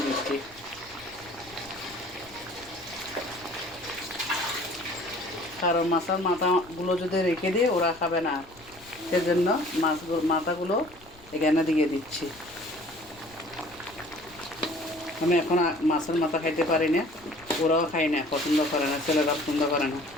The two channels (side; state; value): left; noise; rumble, 24 dB below the sound